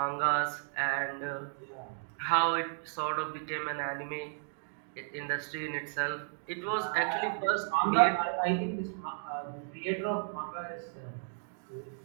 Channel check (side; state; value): left; silent; 55 dB below the other